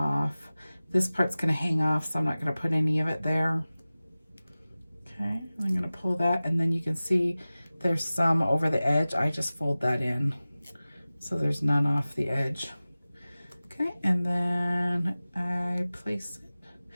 This part's gonna hang off, so I'm not gonna put any of it there. Okay, I'm gonna pull that, and then you can see there's some over the edge. I just fold that in so there's none off the edge. Okay, and then I place it.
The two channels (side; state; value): both; inverted; correlation -0.97